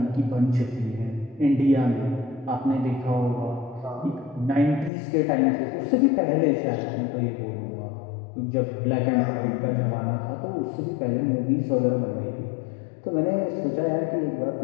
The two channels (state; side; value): drops out; right; at 4.9 s